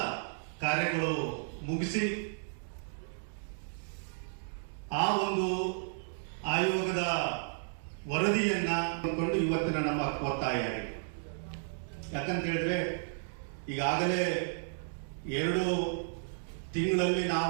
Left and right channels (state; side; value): silent; left; digital silence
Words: ಕಾರ್ಯಗಳು ಮುಗಿಸಿ ಆ ಒಂದು ಆಯೋಗದ ವರದಿಯನ್ನ ಕೊಂಡು ಇವತ್ತಿನ ನಮ್ಮ ಒತ್ತಾಯ. ಯಾಕಂತ ಹೇಳಿದ್ರೆ ಈಗಾಗಲೇ 2 ತಿಂಗಳಲ್ಲಿ